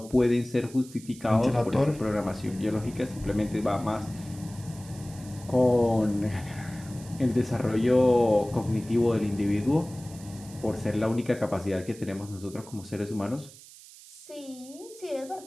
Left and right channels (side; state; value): right; noise; hiss, 19 dB below the sound